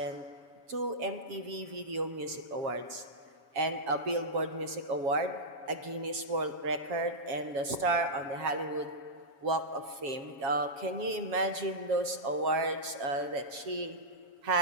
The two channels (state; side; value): late; left; 7.5 ms